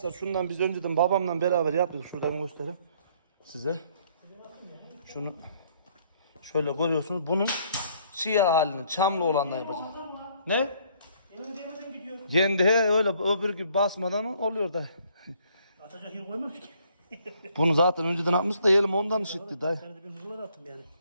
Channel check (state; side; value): inverted; both; correlation -0.64